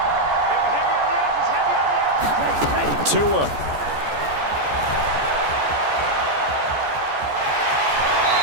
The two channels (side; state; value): left; late; 14 ms